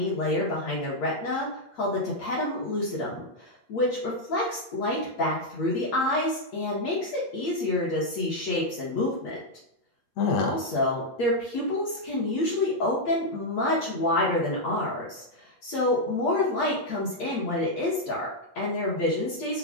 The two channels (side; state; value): right; late; 8.4 ms